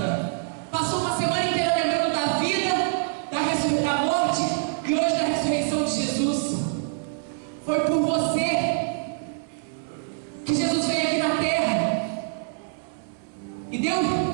passou uma semana inteira lembrando da vida, da morte e hoje da ressurreição de Jesus. Foi por você que Jesus veio aqui na terra e deu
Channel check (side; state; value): left; silent; 62 dB below the other